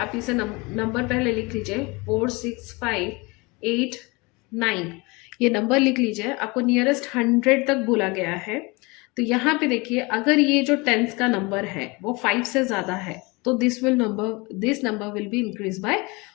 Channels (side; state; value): right; quieter; 26.0 dB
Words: इसे नंबर पहले लिख लीजिए 4 6 5 8 9। ये नंबर लिख लीजिए। आपको नियरेस्ट 100 तक बोला गया है। तो यहाँ पे देखिए अगर ये जो टेंस का नंबर है वो 5 से ज़्यादा है तो this number will be increase by